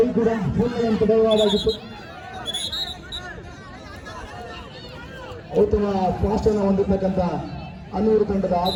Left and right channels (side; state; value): both; identical; correlation 1.00